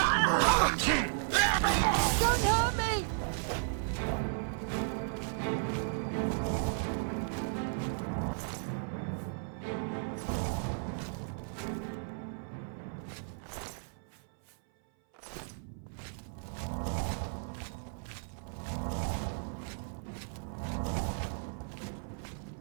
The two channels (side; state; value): left; silent; 55 dB below the other